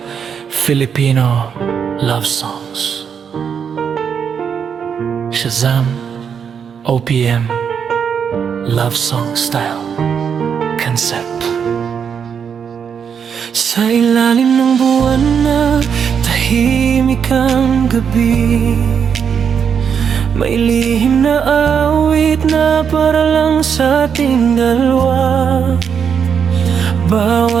Filipino love songs. Shazam, OPM, love song style, concept. Sa ilalim ng buwan na tahimik ang gabi, may lihim na awit na para lang sa ating dalawa.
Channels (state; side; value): quieter; left; 7.2 dB